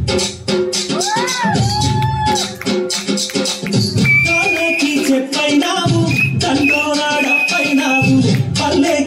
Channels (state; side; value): identical; both; correlation 1.00